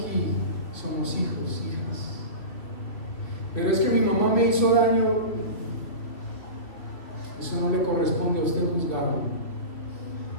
somos hijos, hijas. Pero es que mi mamá me hizo daño. Eso no le corresponde a usted juzgarlo.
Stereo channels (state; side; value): late; right; 3.2 ms